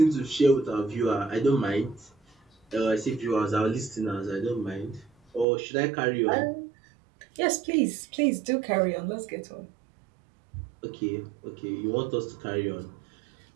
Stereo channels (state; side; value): drops out; left; at 5.5 s